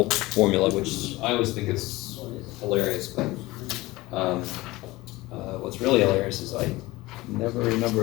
formula, which I always think is hilarious, but what's really hilarious is I never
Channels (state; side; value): quieter; right; 19.9 dB